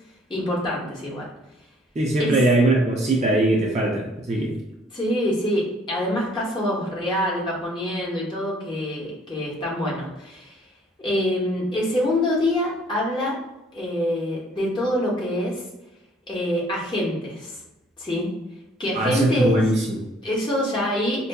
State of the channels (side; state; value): both; normal; correlation 0.60